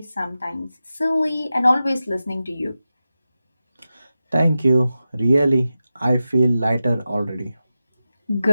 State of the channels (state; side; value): inverted; both; correlation -0.92